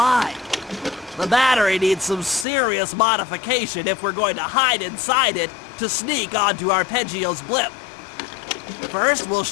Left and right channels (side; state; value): right; drops out; at 2.5 s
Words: The battery needs some serious modification if we're going to hide inside it to sneak onto Arpeggio's blimp. First, we'll